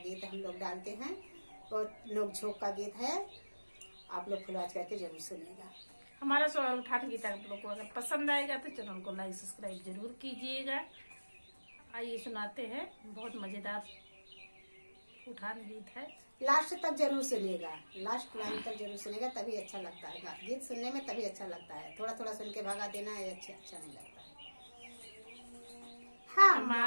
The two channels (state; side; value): inverted; both; correlation -1.00